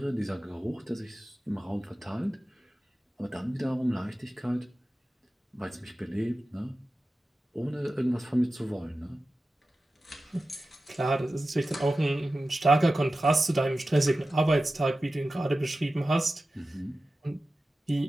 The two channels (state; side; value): normal; both; correlation 0.94